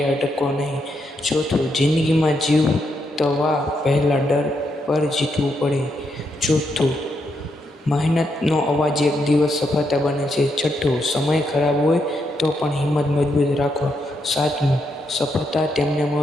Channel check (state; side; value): normal; both; correlation 0.80